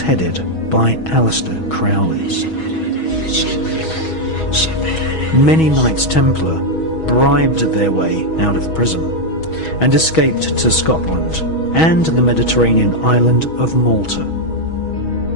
by Aleister Crowley. Many Knights Templar bribed their way out of prison and escaped to Scotland and the Mediterranean island of Malta.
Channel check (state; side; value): late; right; 6.2 ms